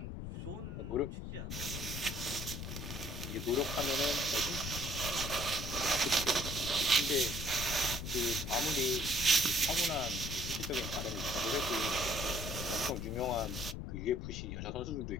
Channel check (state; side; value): noise; left; rumble, 6 dB below the sound